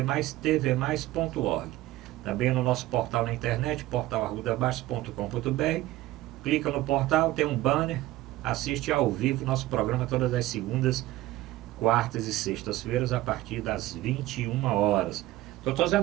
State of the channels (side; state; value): left; quieter; 16.5 dB